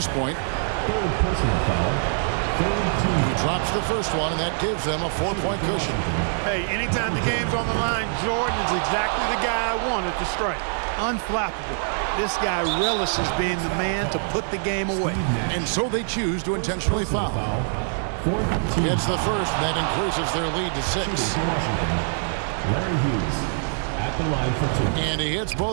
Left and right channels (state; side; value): silent; left; digital silence